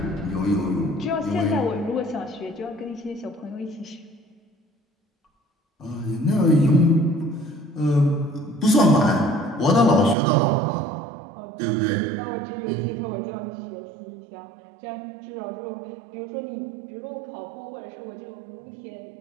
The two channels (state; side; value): drops out; left; at 10.2 s